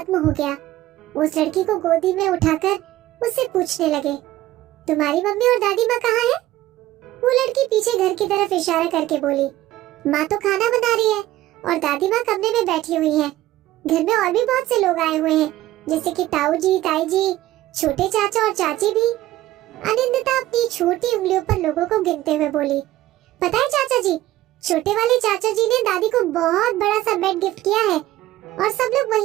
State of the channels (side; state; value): left; quieter; 15.4 dB